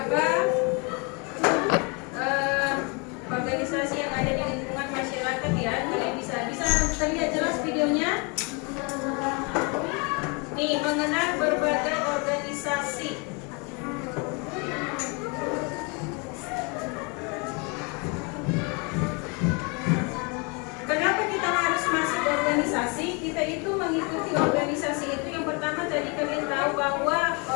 organisasi yang ada di lingkungan masyarakat ya. Kalian bisa terlihat jelas videonya. Nih, mengenal berbagai organisasi. Kenapa kita harus masuk organisasi? Kita itu mengikuti organisasi itu. Yang pertama tadi kalian tahu bahwa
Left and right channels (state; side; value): quieter; right; 32.0 dB